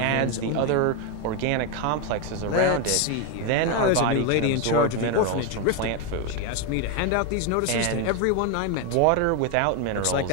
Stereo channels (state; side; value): different; both; correlation 0.02